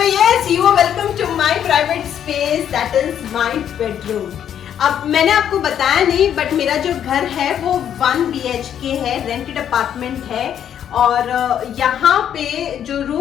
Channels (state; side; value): quieter; right; 9.5 dB